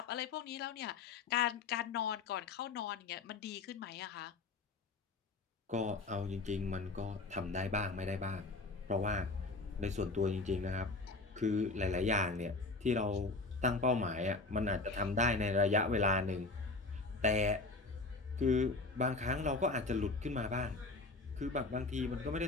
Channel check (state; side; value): quieter; right; 3.4 dB